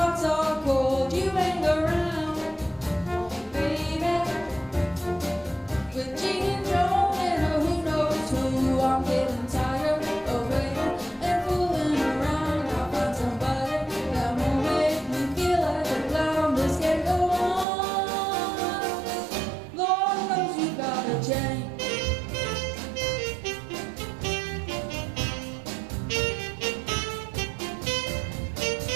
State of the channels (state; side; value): drops out; left; at 17.7 s